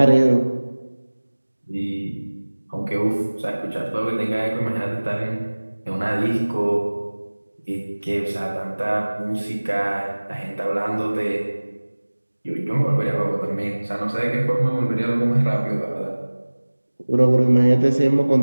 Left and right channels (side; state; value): both; inverted; correlation -1.00